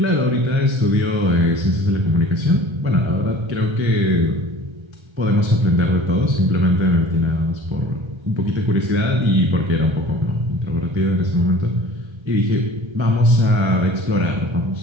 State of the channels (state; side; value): late; left; 1.3 ms